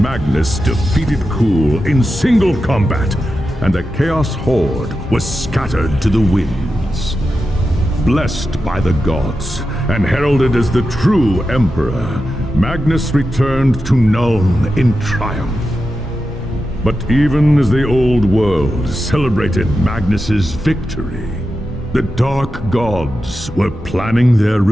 Magnus defeated Kul in single combat, and the Chaos Horde was scattered to the winds. Blessed by the gods and heralded as the true Emperor, Magnus returned to Nuln in triumph. But even as the old world celebrated Magnus's victory, the dark gods were planning their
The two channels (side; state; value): both; normal; correlation 0.90